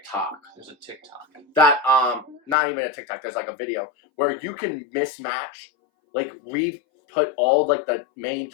there's a TikTok. that not even a TikTok. There's like a video where you can mismatch, like put all like the main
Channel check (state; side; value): drops out; right; at 2.6 s